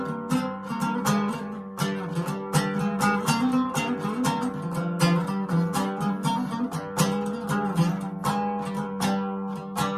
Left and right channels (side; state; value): both; identical; correlation 1.00